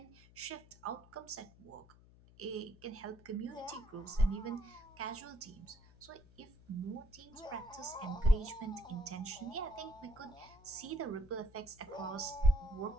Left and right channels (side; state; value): left; noise; hum, 23 dB below the sound